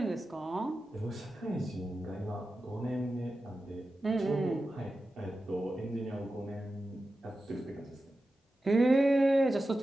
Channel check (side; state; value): both; normal; correlation 0.92